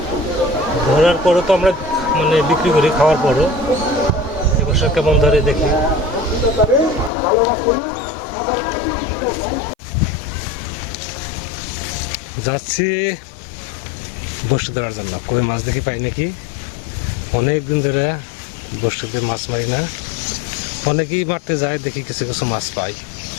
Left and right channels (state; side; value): drops out; right; at 7.1 s